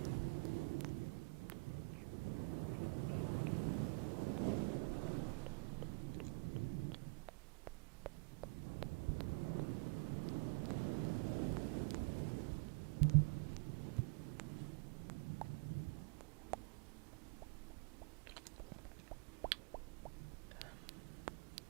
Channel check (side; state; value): left; quieter; 32.4 dB